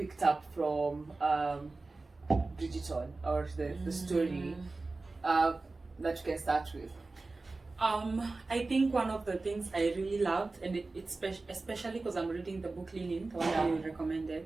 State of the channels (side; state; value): left; quieter; 3.5 dB